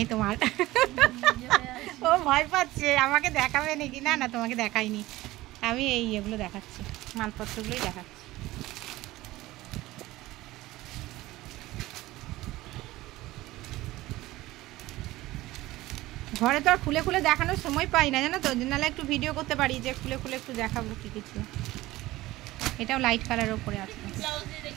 তোমার। ও ভয় পাচ্ছে আমাকে দেখাবে নাকি। না না, তোমাকে দেখাইনি, আমি এগুলো দেখাচ্ছি, মালপত্রগুলোই দেখাচ্ছি। ঘরে তো আর খুলে খুলে দেখানোর সময় পাই না, জানো তো, নাহলে একটু ভিডিও করতে পারি যে খুলে খুলে একটু দেখাবো কি কিছু। এটাও লাইট কালারের উপরে আছে,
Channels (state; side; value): quieter; left; 17.7 dB